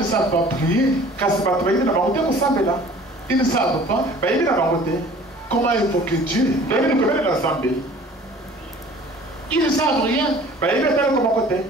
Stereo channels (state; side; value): normal; both; correlation 0.49